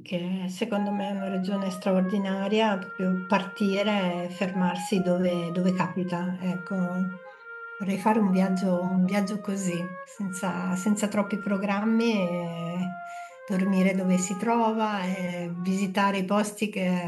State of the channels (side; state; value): both; identical; correlation 1.00